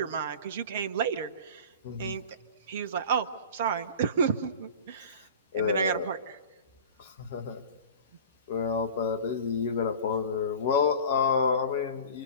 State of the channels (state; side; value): inverted; both; correlation -0.38